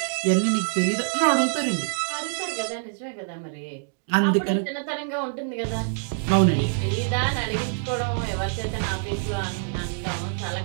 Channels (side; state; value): left; silent; digital silence